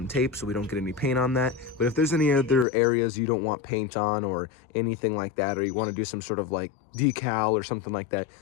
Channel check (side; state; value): right; drops out; at 2.7 s